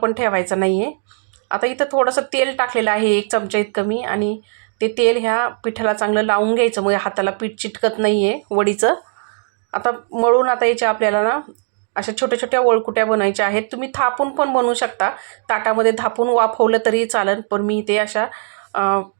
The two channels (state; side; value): silent; left; 67 dB below the other